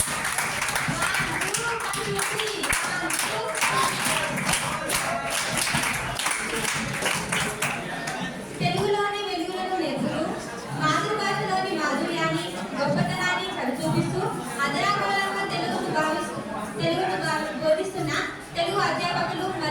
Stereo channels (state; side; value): identical; both; correlation 1.00